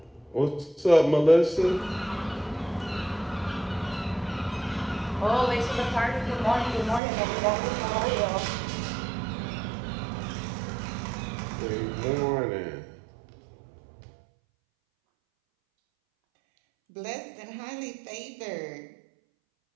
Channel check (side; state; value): left; drops out; at 7.0 s